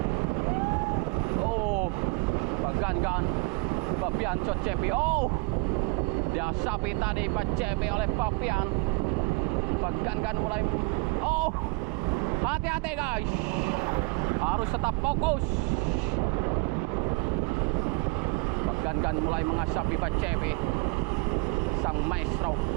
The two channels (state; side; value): quieter; left; 28.1 dB